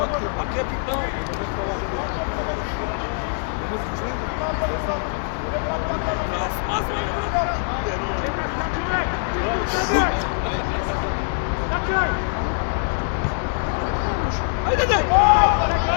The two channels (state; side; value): silent; right; 63 dB below the other